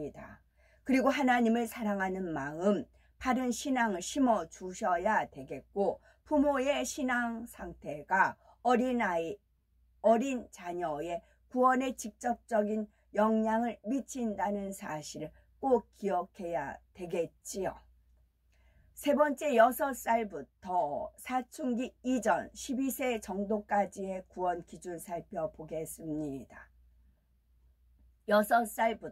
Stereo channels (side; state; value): both; identical; correlation 1.00